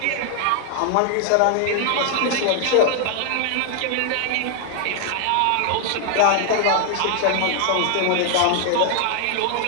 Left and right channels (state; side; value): different; both; correlation 0.00